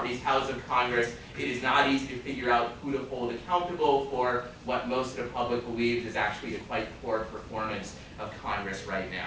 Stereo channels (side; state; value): both; identical; correlation 1.00